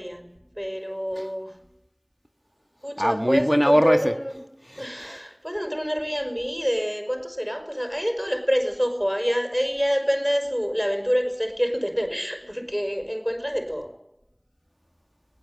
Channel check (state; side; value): identical; both; correlation 1.00